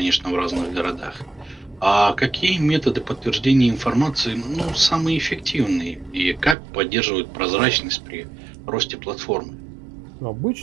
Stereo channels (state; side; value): drops out; left; at 6.6 s